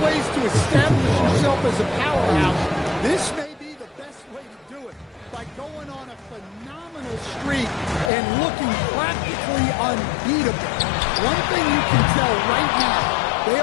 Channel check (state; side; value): drops out; right; at 8.1 s